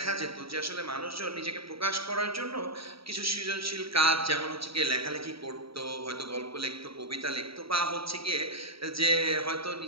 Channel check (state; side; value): late; left; 0.75 ms